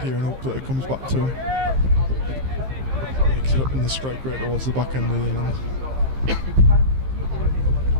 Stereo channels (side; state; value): left; late; 15 ms